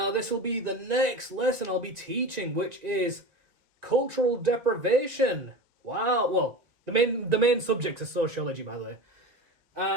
this will be the next lesson I'll be teaching, which is cultural deprivation. Wow, well, the main subject is sociology, by the way.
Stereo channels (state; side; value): late; left; 1.9 ms